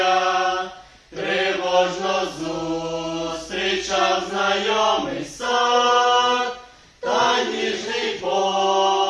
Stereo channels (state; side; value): identical; both; correlation 1.00